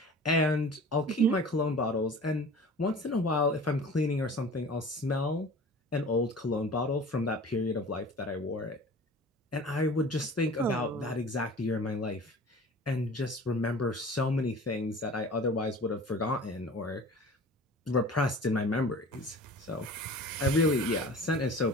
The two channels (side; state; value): both; normal; correlation 0.41